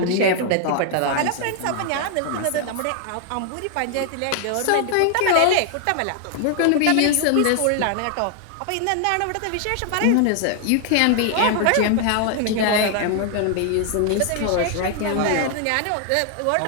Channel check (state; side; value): different; both; correlation 0.00